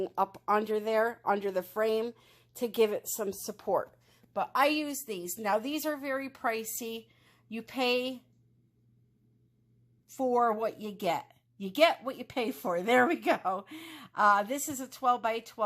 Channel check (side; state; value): both; identical; correlation 1.00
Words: up under there, under the frame, to give it some support. But I use these. Now, these are very pricey. You pay for what you get. You get what you pay for. There we go. This is a 12 by